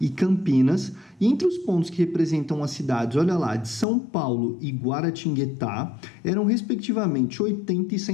Campinas, e entre os pontos que representam as cidades, olha lá, de São Paulo e Guaratinguetá, eram respectivamente 80 e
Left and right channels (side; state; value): right; drops out; at 3.9 s